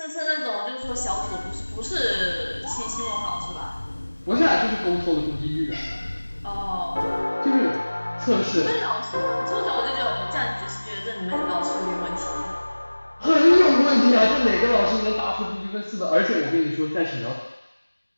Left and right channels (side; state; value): both; inverted; correlation -1.00